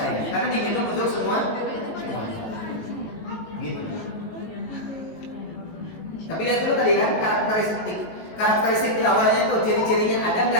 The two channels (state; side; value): late; right; 19 ms